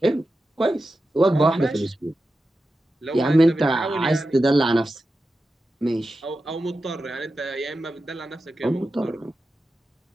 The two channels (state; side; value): normal; both; correlation 0.91